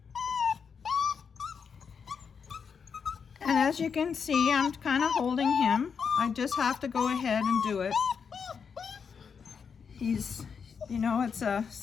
And as you can see, I'm kind of holding him. I just have to go ahead and do it. He's, you know, it's a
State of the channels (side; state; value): right; quieter; 6.3 dB